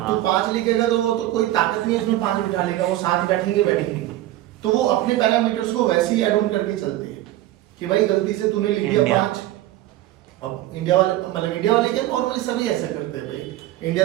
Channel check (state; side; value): quieter; left; 15.1 dB